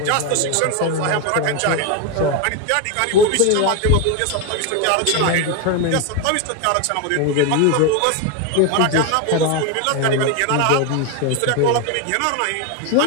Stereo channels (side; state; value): both; different; correlation 0.02